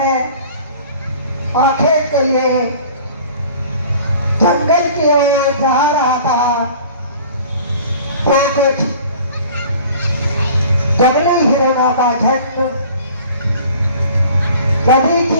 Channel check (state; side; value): inverted; both; correlation -0.47